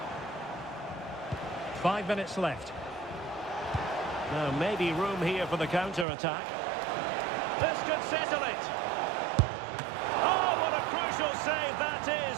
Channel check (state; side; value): drops out; left; at 6.1 s